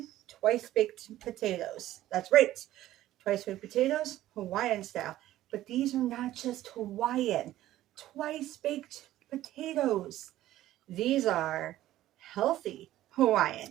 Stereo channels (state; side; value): quieter; left; 14.3 dB